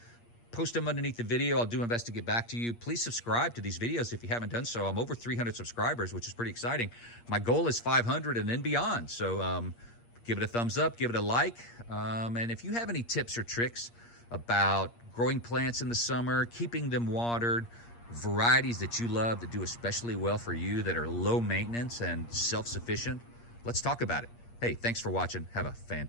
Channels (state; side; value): late; right; 8.5 ms